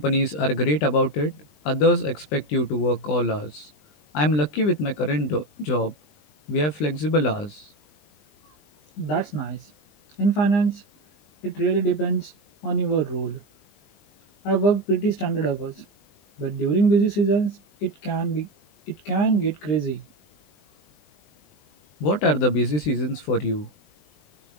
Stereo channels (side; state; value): right; late; 20 ms